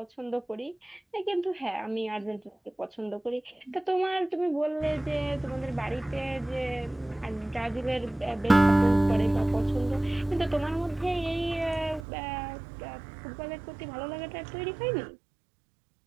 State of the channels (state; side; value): drops out; left; at 12.1 s